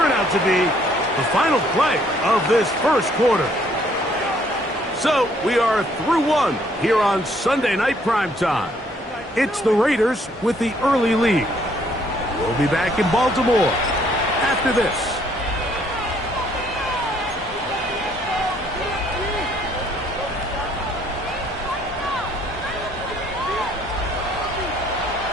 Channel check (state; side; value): normal; both; correlation 0.65